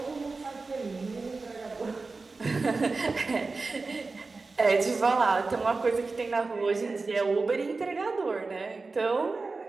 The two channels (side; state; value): left; quieter; 3.9 dB